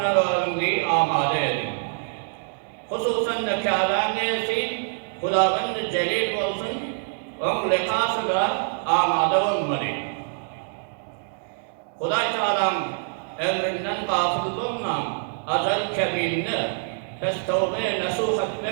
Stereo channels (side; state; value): left; silent; digital silence